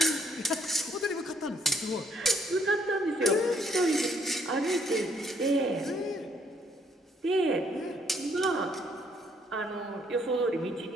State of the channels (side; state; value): both; normal; correlation 0.68